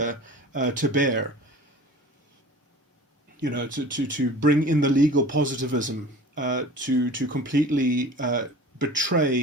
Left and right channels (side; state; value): both; normal; correlation 0.41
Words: to bear. To bring in the legal positivism, to completely